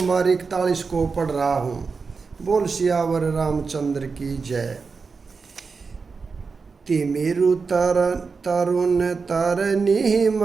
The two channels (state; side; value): quieter; left; 4.8 dB